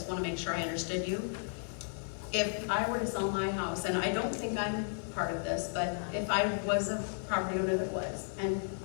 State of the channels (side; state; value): right; silent; digital silence